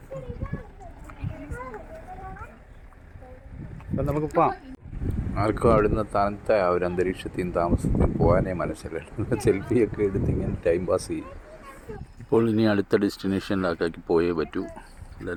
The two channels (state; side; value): identical; both; correlation 1.00